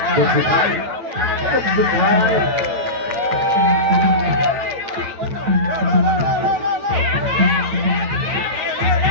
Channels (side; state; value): left; late; 8.7 ms